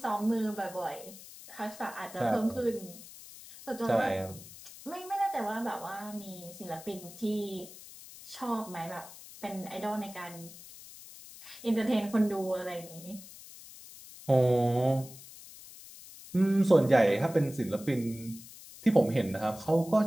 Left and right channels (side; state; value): left; noise; hiss, 17 dB below the sound